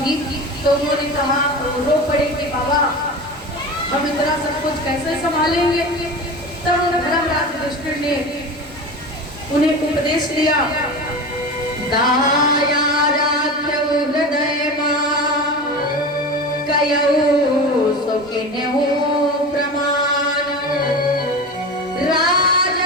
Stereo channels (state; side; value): normal; both; correlation 0.29